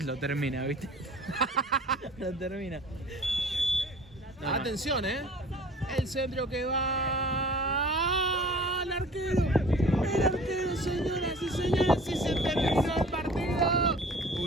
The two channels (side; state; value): both; normal; correlation 0.46